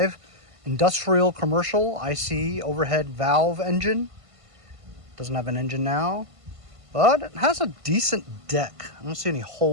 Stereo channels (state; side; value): late; left; 1.5 ms